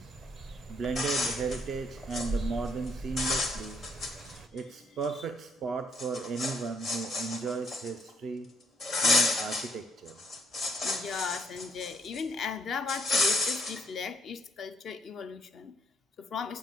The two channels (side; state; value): both; normal; correlation 0.68